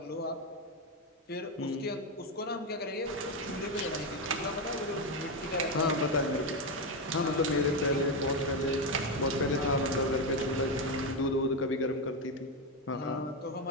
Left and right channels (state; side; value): normal; both; correlation 0.09